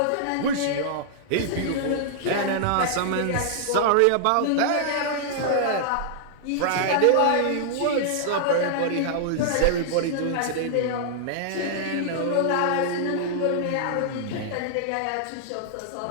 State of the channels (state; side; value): different; both; correlation -0.01